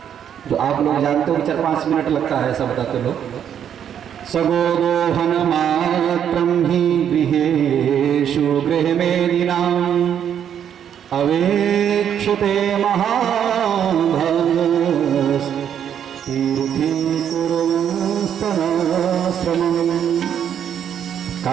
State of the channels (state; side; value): quieter; left; 9.1 dB